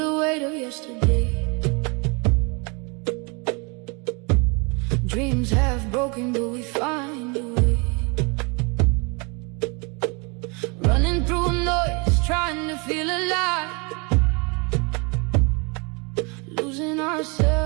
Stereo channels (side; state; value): left; quieter; 31.1 dB